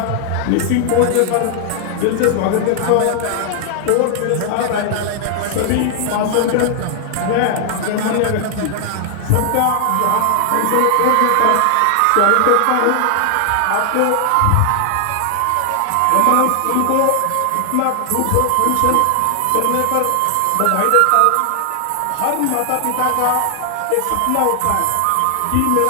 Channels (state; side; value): different; both; correlation 0.00